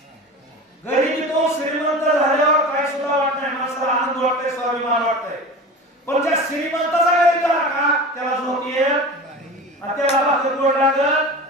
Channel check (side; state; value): both; normal; correlation 0.33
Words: गरिबीतून श्रीमंत झाल्यावर काही सुद्धा वाटत नाही, माणसाला आनंद वाटतंय, स्वाभिमान वाटतंय. पण ज्या श्रीमंताचा गरीब झाला का त्याला झोप येत आणि त्याला भाकर गोड